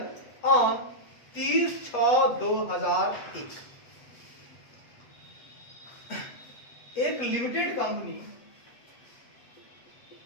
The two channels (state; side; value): late; right; 8.3 ms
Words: on 30/6/2001। एक लिमिटेड कंपनी,